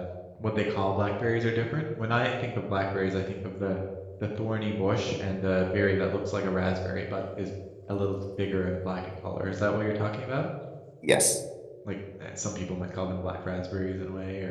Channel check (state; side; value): identical; both; correlation 1.00